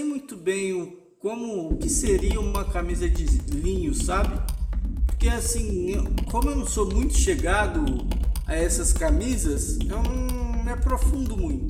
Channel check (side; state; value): both; identical; correlation 1.00